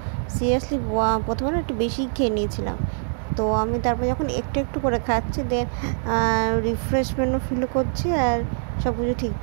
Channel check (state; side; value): silent; left; digital silence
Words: সিরিয়াসলি প্রথমে একটু বেশি খেয়ে নিয়েছিলাম। তো আমি তারপর যখন একটু একটু করে খাচ্ছি, দেন রিফ্রেশমেন্টও ফিল করছি, আর সব কিছু